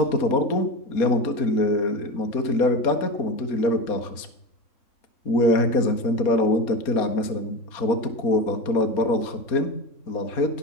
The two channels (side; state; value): right; late; 4.2 ms